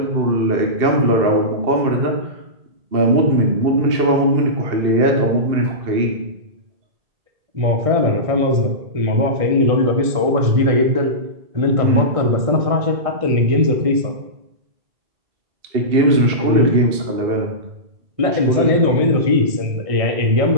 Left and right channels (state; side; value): late; left; 1.6 ms